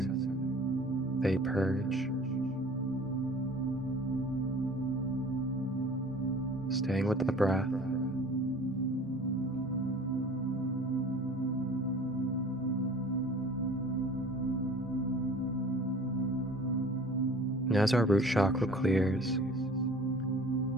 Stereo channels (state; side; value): normal; both; correlation 0.45